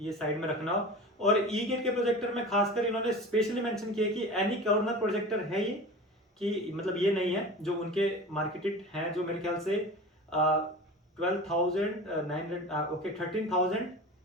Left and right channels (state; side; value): normal; both; correlation 0.34